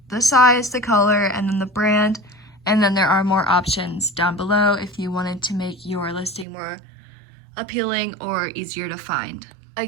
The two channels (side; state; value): left; drops out; at 6.5 s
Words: the size, the color, and then the brand, and then there are more options down below if you wanted to make your listing more appealing or easier to find.